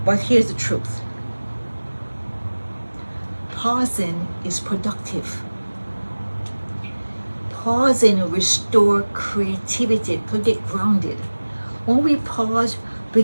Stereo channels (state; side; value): inverted; both; correlation -1.00